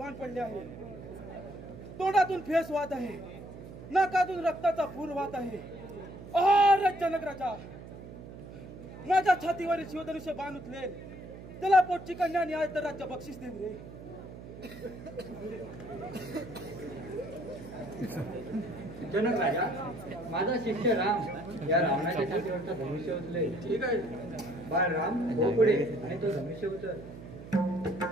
पडले आहे. तोंडातून फेस वाहत आहे, नाकातून रक्ताचा पूर वाहत आहे. अरे जनकराजा, माझ्या छातीवरील शिवधनुष्य बाण उचलेल त्याला पोटची कन्या न्याय तर राज्य बक्षीस देईल रे. जनक राजा, माझा शिष्य राम या रावणाच्या छातीवरचा धनुष्य उचले. ठीक आहे. बाळ राम हो पुढे आणि तो धनुष्य उचल.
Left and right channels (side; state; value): right; noise; hum, 14 dB below the sound